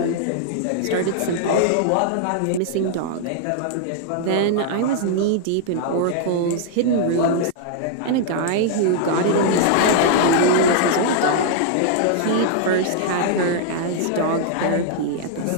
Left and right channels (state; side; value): different; both; correlation -0.01